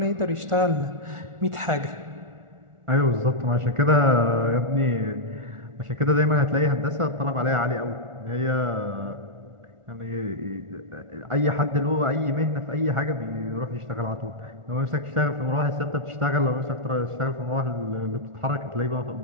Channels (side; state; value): left; late; 1.4 ms